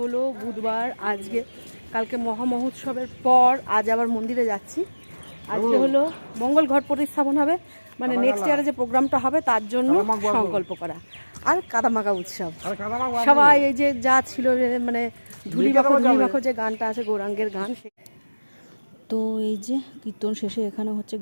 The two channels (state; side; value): inverted; both; correlation -1.00